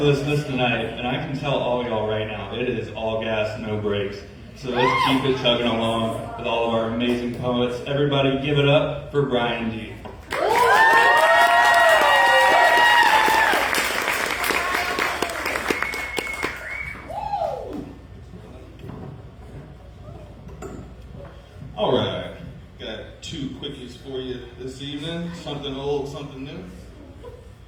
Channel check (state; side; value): identical; both; correlation 1.00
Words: this list tonight, and I can tell all y'all right now, it is all gas, no brakes. So let's keep it chugging along with all of our amazing poets. Everybody give it up for Brian G. All right, got 2 quickies for you this evening. Something old, something new.